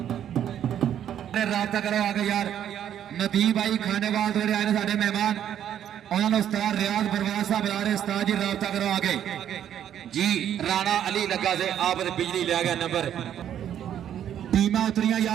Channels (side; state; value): left; quieter; 10.1 dB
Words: राबता करो आगे यार नदीम भाई खानेवाल थोड़े आए साडे मेहमान उन्होंने उस्ताद रियाज बरवास साहब बुला रहे उस्ताद जी राबता करो आगे जी। राणा अली लगा से आप बिजली ले गया नंबर टीमा उतरिया